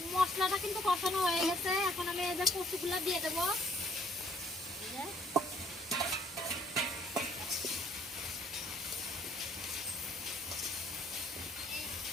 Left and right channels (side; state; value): both; normal; correlation 0.63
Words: মশলাটা কিন্তু কষানো হয়ে গেছে, এখন আমি এই যে কচুগুলা দিয়ে দেবো।